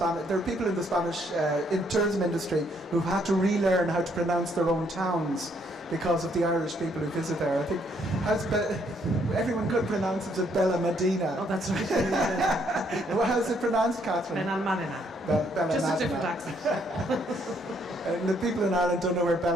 There are people in the Spanish in tourism industry who've had to relearn how to pronounce their own towns because of the Irish people who visit there. I think everyone could pronounce it as Bella Medina. Oh, that's right. Well, how's it pronounced, Kathryn? Benalmadena. Just a different accent. And the people in Ireland don't know where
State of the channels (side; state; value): both; normal; correlation 0.69